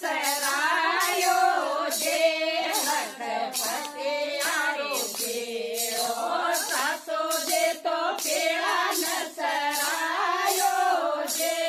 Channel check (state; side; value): identical; both; correlation 1.00